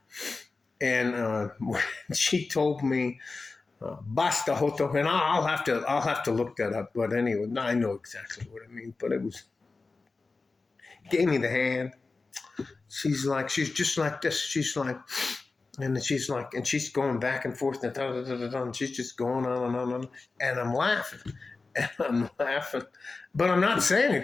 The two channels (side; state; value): right; quieter; 3.9 dB